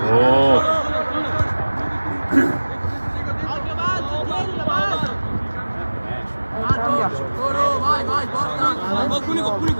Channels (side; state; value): both; inverted; correlation -1.00